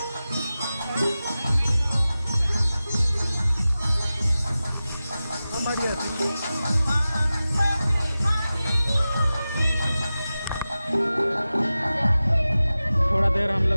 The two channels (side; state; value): both; inverted; correlation -0.95